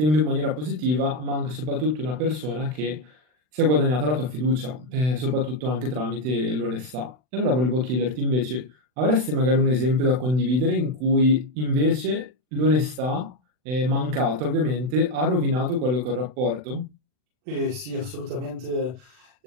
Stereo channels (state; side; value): late; left; 39 ms